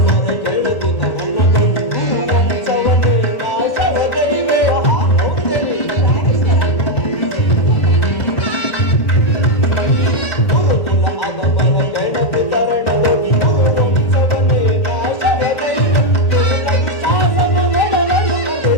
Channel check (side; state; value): right; late; 1.7 ms